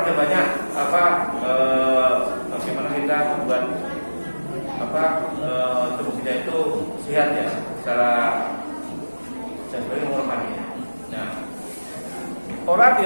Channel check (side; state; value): both; inverted; correlation -1.00